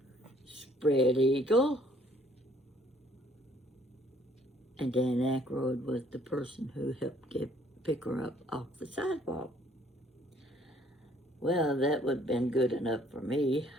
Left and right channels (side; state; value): both; normal; correlation 0.61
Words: spread eagle, and Dan Aykroyd was the person who helped pick her up off the sidewalk. Well, that would have been good enough for me.